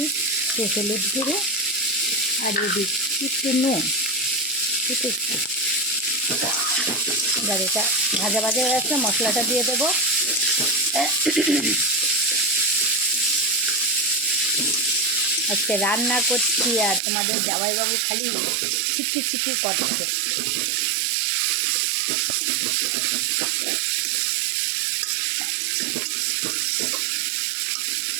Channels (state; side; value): drops out; left; at 17.0 s